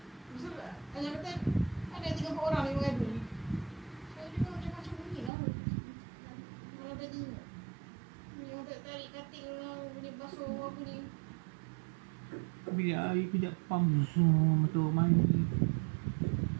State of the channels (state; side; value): drops out; left; at 5.3 s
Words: tu ayah kata, ada 3-4 orang yang mengadu ni. Saya juga macam-macam bunyi lah. Malam tadi ni orang tarik katil lah, boleh basuh apa ni. Bilik air kejap pump semua, betul mandi.